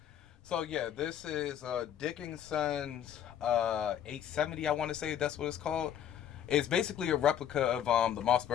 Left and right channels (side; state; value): right; quieter; 9.8 dB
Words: So yeah, this is Dickinson's 870. I want to say that's what it's called. It's basically a replica of the